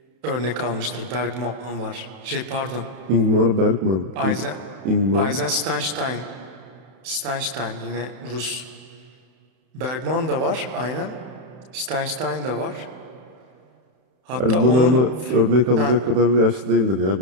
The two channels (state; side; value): late; left; 31 ms